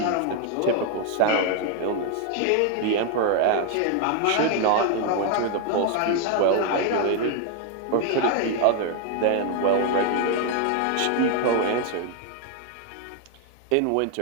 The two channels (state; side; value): different; both; correlation 0.01